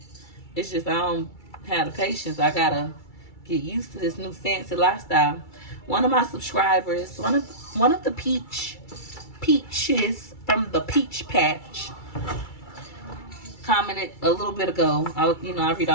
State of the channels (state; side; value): late; right; 2.3 ms